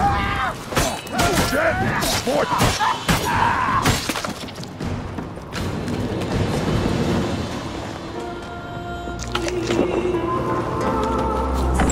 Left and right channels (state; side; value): identical; both; correlation 1.00